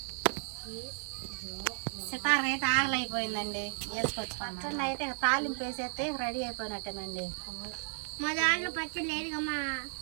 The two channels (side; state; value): left; silent; 55 dB below the other